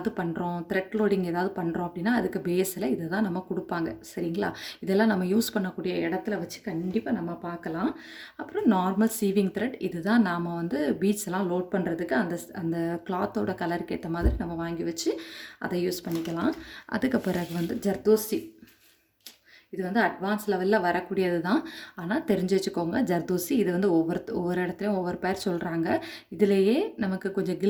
பண்ணுறோம், த்ரெட் லோடிங் ஏதாவது பண்ணுறோம் அப்படின்னா அதுக்கு பேஸில் இதை தான் நம்ம கொடுப்பாங்க. சரிங்களா? இதெல்லாம் நம்ம யூஸ் பண்ணக்கூடிய இடத்துல வச்சு கண்டிப்பாக நம்ம பார்க்கலாம். அப்புறம் நார்மல் சீவிங் த்ரெட். இது தான் நாம் வந்து பீட்ஸ் எல்லாம் லோட் பண்ணுறதுக்கு அந்த கிளாத்தோட கலருக்கு ஏற்ற மாதிரி நம்ம வாங்கி வச்சு அதை யூஸ் பண்ணிக்கலாம். அதுக்கு பிறகு வந்து ஜர்தோசி. இது வந்து அட்வான்ஸ் லெவலில் வரக்கூடியது தான். ஆனால் தெரிஞ்சு வச்சுக்கோங்க, ஜர்தோசி. இது வந்து ஒவ்வொரு இடத்துலையும் ஒவ்வொரு பேர் சொல்கிறாங்க. இதிலேயே நமக்கு கொஞ்சம்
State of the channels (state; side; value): identical; both; correlation 1.00